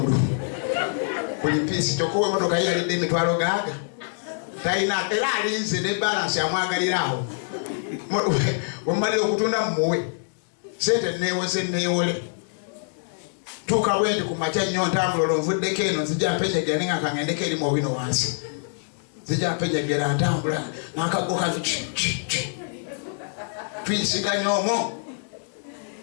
buli piisi kyokka emotoka ye yalidde emitwalo gaaga talina era alinze ne balansi amwagalira awo wemumalire okutunda mumuwe sente neewose neewole tuuka bwendi ku makya nnyo ntambula olonvuddeko eno nzija mpenyegera nenga kangendeko erimu obino wansi nzija mpenyegera ntambula n'akago kazi tuyisiganya omwo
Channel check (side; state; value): right; silent; digital silence